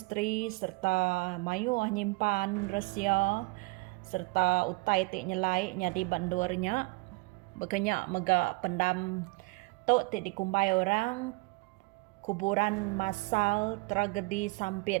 serta mayu nyimpan rahsia serta utai tik nyelai nyadi bandurnya bekenyak megak pendam tu tik dikumbai orang kuburan masal tragedi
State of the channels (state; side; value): quieter; left; 26.5 dB